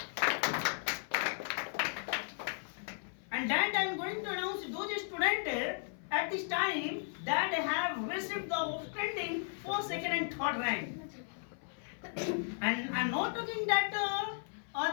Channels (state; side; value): silent; right; 54 dB below the other